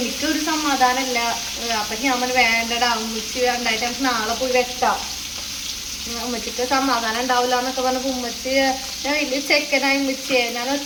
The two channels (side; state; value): both; identical; correlation 1.00